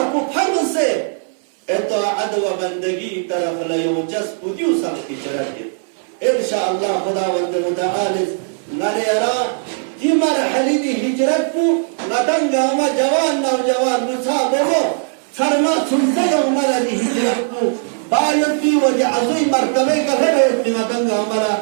کو فرم سے اطاعت و بندگی طرف لیو جس پودیو سب کی چرت انشاءاللہ خداوند متعال نرے ارا دی مرحلی دی ہجرت کو ندنگا ہما جوان نوجوان مصابہو سرما سنزل ہمارا دی ہجرت کو باید بھی وجہ عظیم مرتبے کا ہے اتنا دنگا ہمارا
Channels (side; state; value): left; silent; digital silence